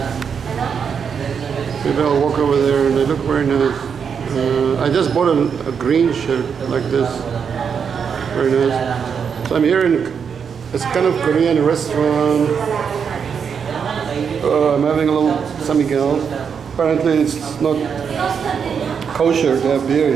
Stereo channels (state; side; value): quieter; left; 6.7 dB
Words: Maybe I'll walk over there and they look very nice. I just bought a green shirt like this. Very nice. So I'm here in it's kind of Korean restaurant. I'm having a little Samyupsal. Apparently it's not kosher to have beer